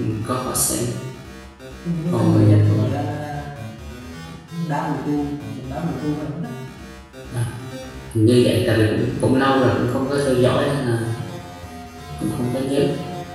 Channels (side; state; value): both; identical; correlation 1.00